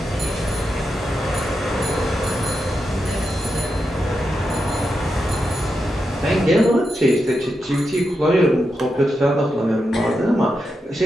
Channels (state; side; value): normal; both; correlation 0.87